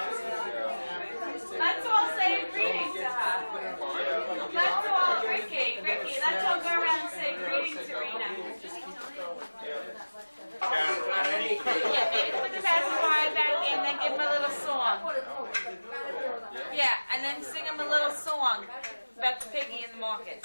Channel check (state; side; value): inverted; both; correlation -1.00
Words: Let's all say greetings to her. Let's all, Ricky, let's all go around and say greetings to Rena. Yeah, maybe put the pacifier back in, then give him a little song. Yeah, and then sing him a little song about the piggy in the market.